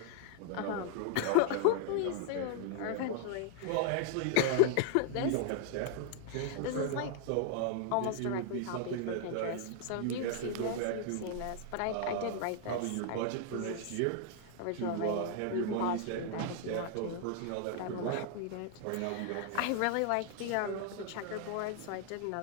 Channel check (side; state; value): both; different; correlation 0.00